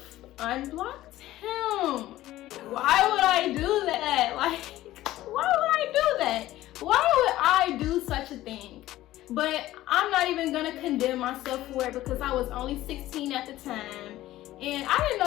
unblocked him. Why would I do that? Like, why would I do that? Why would I do such a thing? But I'm not even gonna condemn myself for it because I was only 16 at the time and I didn't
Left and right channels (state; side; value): quieter; right; 15.3 dB